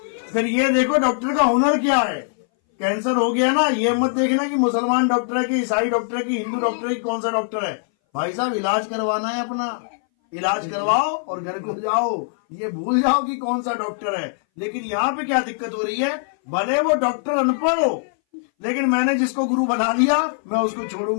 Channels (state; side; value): silent; right; 61 dB below the other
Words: फिर ये देखो डॉक्टर का हुनर क्या है। कैंसर हो गया ना, ये मत देखना कि मुसलमान डॉक्टर है कि ईसाई डॉक्टर है कि हिंदू डॉक्टर है कि कौन सा डॉक्टर है। भाई साहब, इलाज करवाना है अपना, इलाज करवाओ और घर को जाओ। ये भूल जाओ कि कौन सा डॉक्टर है। लेकिन यहाँ पे क्या दिक्कत हो रही है, भले वो डॉक्टर अनपढ़ हो, लेकिन मैंने जिसको गुरु बना लिया मैं उसको